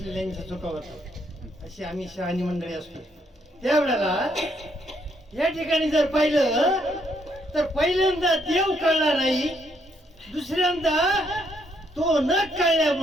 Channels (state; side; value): normal; both; correlation 0.72